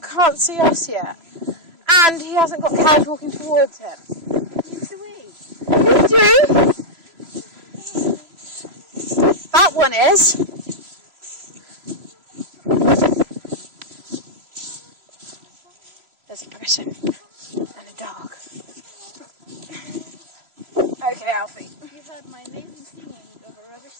can't see us yet. And he hasn't got cows walking towards him. You do? That one is. There's a person and a dog. Okay, Alfie. You've heard my amazing singing of a rubbish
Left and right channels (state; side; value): late; left; 3.0 ms